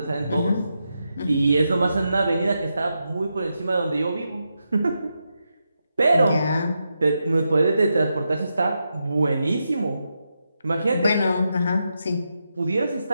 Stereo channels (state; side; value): inverted; both; correlation -0.86